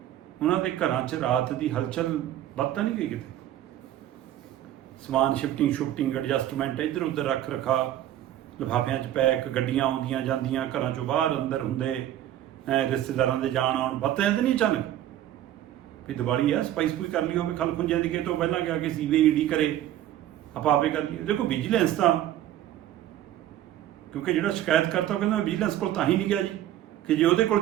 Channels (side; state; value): left; quieter; 12.4 dB